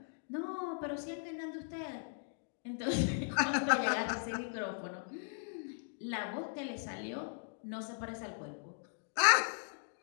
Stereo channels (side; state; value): right; silent; digital silence